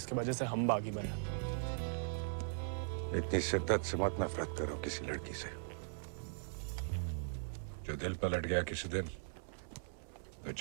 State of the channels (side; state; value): left; silent; digital silence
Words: वजह से हम बागी बने। इतनी शिद्दत से मत नफरत करो किसी लड़की से। जो दिल पलट गया किसी दिन, तो